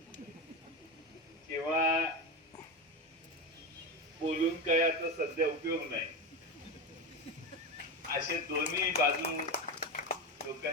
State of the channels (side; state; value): both; normal; correlation 0.18